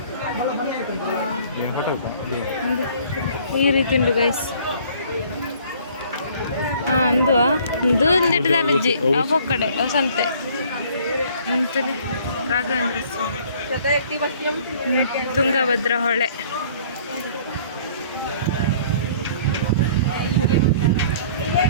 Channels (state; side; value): inverted; both; correlation -0.55